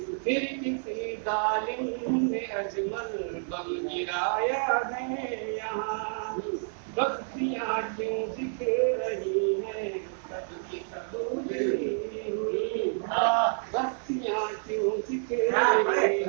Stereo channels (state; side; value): silent; left; digital silence